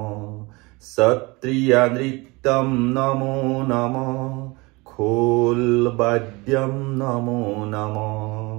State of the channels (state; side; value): quieter; left; 24.8 dB